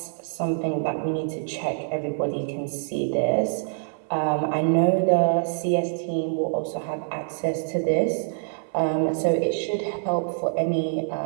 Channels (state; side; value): silent; left; 57 dB below the other